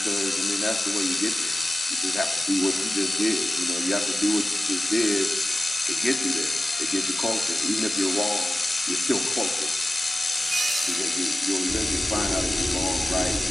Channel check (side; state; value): both; normal; correlation 0.95